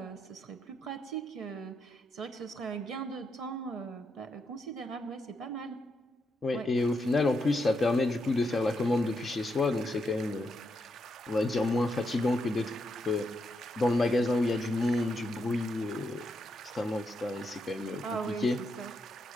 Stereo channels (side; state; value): both; normal; correlation 0.82